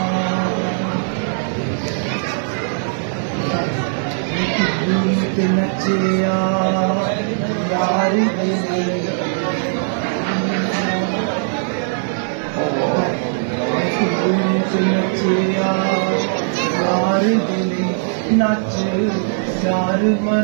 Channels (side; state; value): left; silent; 56 dB below the other